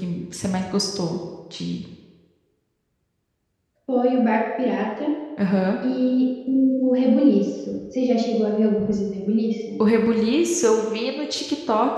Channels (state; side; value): identical; both; correlation 1.00